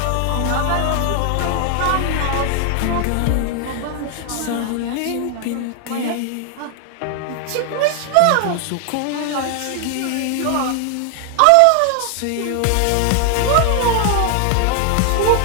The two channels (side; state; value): both; different; correlation 0.00